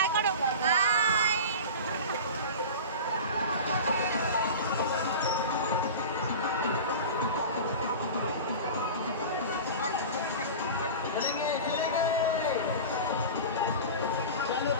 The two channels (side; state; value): both; inverted; correlation -0.31